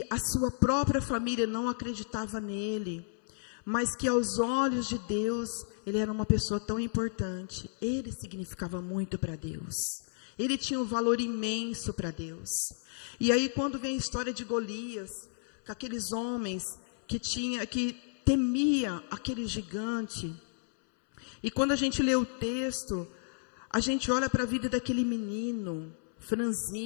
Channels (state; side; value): silent; right; 56 dB below the other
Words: a sua própria família não acreditava nele, mas que aos olhos de Deus, ele era uma pessoa tão importante, ele significava muito para Deus, ele tinha um valor imenso para Deus. E aí quando vem a história de Golias, com aqueles homens que temia aquele gigante, e quando a gente lê o texto, a gente olha para a vida daquele menino,